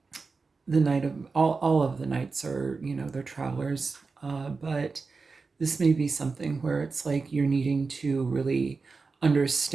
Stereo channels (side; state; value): left; quieter; 4.4 dB